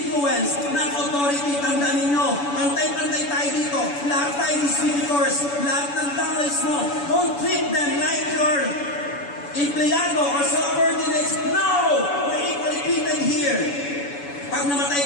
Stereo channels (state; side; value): late; right; 7.0 ms